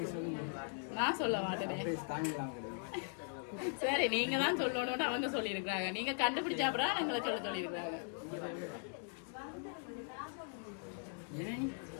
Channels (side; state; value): right; silent; 51 dB below the other